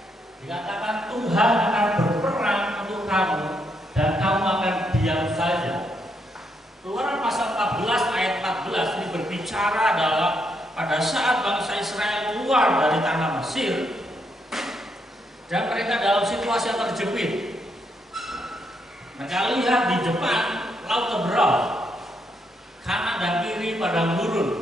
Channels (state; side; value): normal; both; correlation 0.77